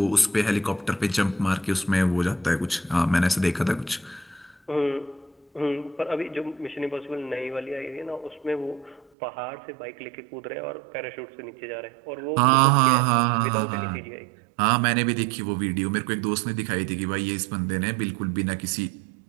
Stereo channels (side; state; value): left; drops out; at 9.1 s